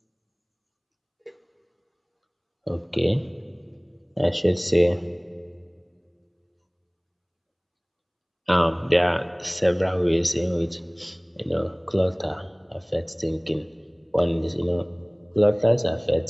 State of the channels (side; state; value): both; identical; correlation 1.00